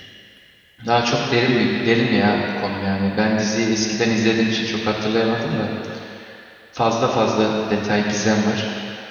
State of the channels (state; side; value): identical; both; correlation 1.00